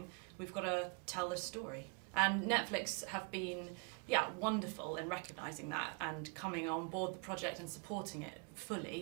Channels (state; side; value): quieter; left; 35.9 dB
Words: We've got to tell this story. And Netflix have been, wonderful in recognising that and coming on board the project and supporting it